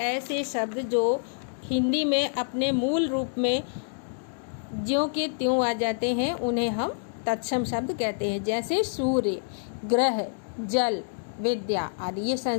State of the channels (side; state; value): right; silent; digital silence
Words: ऐसे शब्द जो हिंदी में अपने मूल रूप में ज्यों के त्यों आ जाते हैं, उन्हें हम तत्सम शब्द कहते हैं। जैसे सूर्य, ग्रह, जल, विद्या आदि ये